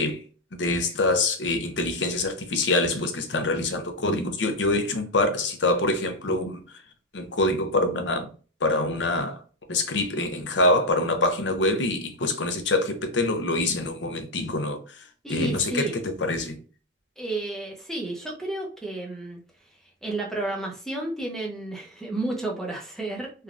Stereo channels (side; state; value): both; normal; correlation 0.07